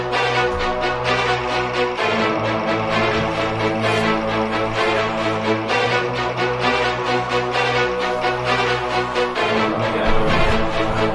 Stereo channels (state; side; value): identical; both; correlation 1.00